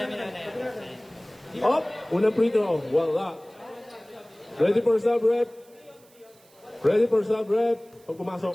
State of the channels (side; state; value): right; noise; hiss, 29 dB below the sound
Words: Up. Unang free throw. Wala. Ready for sub rep. Ready for sub rep. Pag